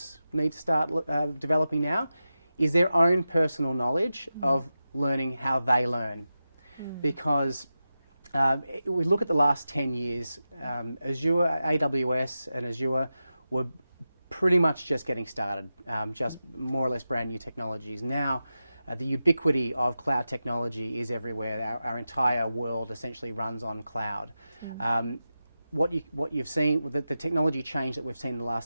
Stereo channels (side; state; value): both; inverted; correlation -0.92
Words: need to start developing now is their own personal knowledge of learning how they learn. Because we look at the last 10 years, Azure, AWS and Azure were pretty much just getting started, just more or less brand new technologies. Now, the ubiquity of cloud technology is everywhere. Our entire world essentially runs on cloud. What you've seen, the technology change that we've seen in the